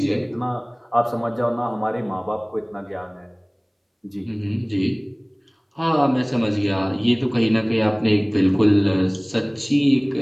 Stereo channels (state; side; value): identical; both; correlation 1.00